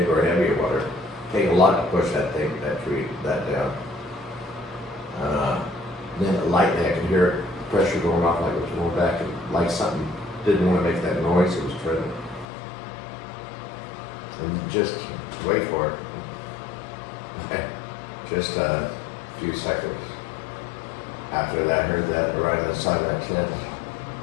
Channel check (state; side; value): drops out; right; at 12.5 s